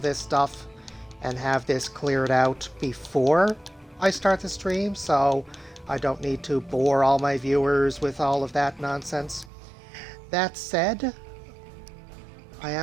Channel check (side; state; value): left; drops out; at 9.5 s